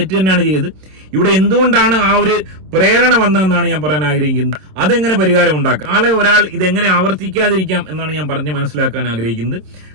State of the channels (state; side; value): late; left; 26 ms